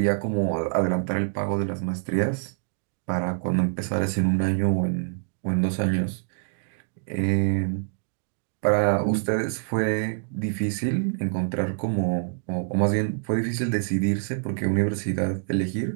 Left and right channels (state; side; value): silent; left; digital silence